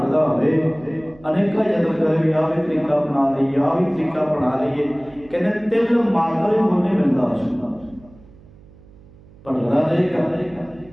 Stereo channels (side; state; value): right; noise; hum, 24 dB below the sound